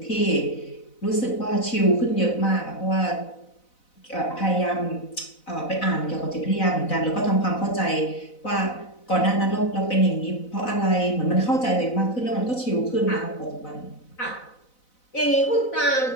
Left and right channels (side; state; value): right; late; 4.0 ms